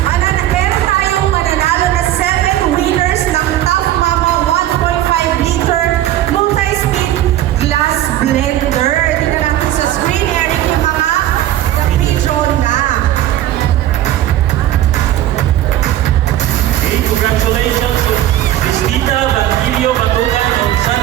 Meron tayong mananalo na 7 winners ng Top Mama 1.5 liter multi-speed glass blender. Tingnan natin sa screen, Eric, yung mga na-pre-draw na. Okay, congratulations to Cristita Batilio Batugan of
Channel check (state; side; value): quieter; left; 13.2 dB